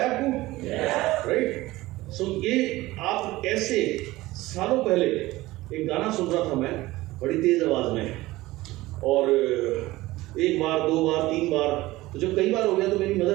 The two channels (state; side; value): quieter; left; 18.5 dB